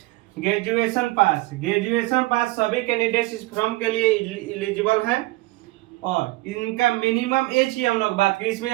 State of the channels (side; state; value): left; quieter; 20.3 dB